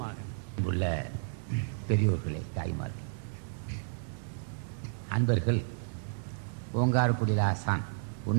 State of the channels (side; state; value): left; silent; digital silence